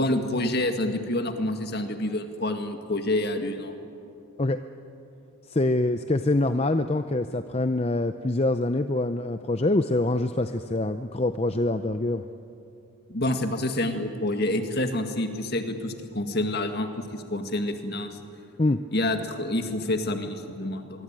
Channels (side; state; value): both; normal; correlation 0.53